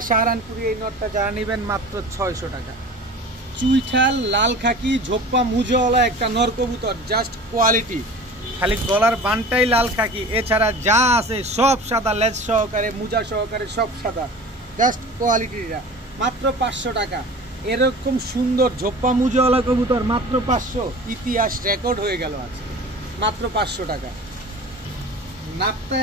সাহারানপুরি এই নরটা যারা নেবেন মাত্র 600 টাকা। চুইঠাল লাল খাকি ঝোপ্পা মুজোওয়ালা একটা নর কবুতর, জাস্ট কোয়ালিটি। খালি গলার বানটাই লাল খাকি, এছাড়া যা আছে সব সাদা, লেজ সহকারে মুজা সহকারে সব সাদা। জাস্ট কোয়ালিটিটা মাত্র 500 টাকা। এরকম সুন্দর ঝোপ্পা মুজোওয়ালা কবুতর মাত্র 500, ইতিহাস রেকর্ড হয়ে গেল আজ, মাত্র 500 টাকা। নাপতা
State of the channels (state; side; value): normal; both; correlation 0.39